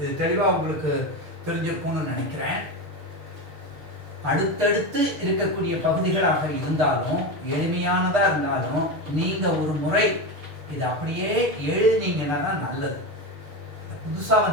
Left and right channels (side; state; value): left; late; 6.4 ms